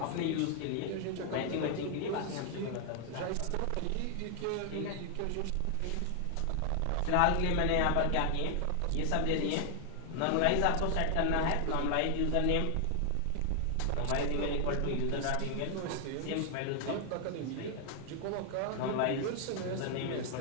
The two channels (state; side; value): different; both; correlation 0.00